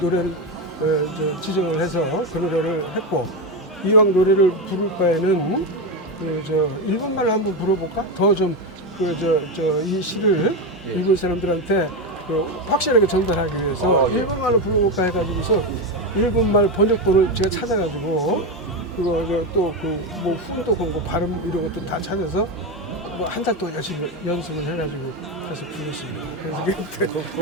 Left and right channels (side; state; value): both; normal; correlation 0.13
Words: 노래를 지정을 해서 그 노래를 했고 이왕 노래를 부를 바에는 일본말로 한번 불러볼까? 더 좀 이 시를 일본 사람들한테 확실하게 전달하기 위해서 예. 일본말로 불러볼까 해가지고서 일본말 번역본을 제가 찾아가지고 그거 또뭐 훈독하고 뭐 발음 이런 것도 다 찾아서 뭐 한 달 동안 열심히 연습을 해가지고 해서 불렀습니다.